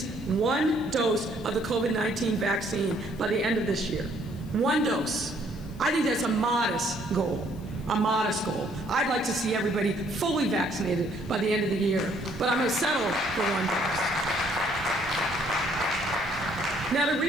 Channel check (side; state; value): left; noise; hiss, 26 dB below the sound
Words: one dose of the COVID-19 vaccine by the end of this year. One dose. I think that's a modest goal. A modest goal. I'd like to see everybody fully vaccinated by the end of the year, but I'm going to settle for one dose. Now, to